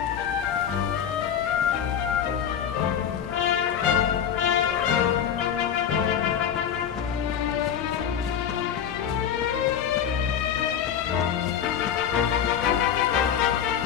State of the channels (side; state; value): right; quieter; 8.8 dB